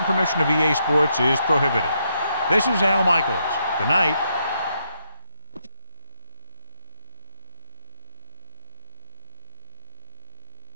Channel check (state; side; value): inverted; both; correlation -0.78